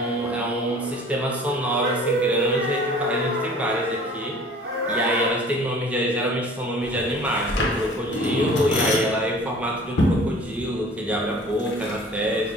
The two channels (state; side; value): normal; both; correlation 0.48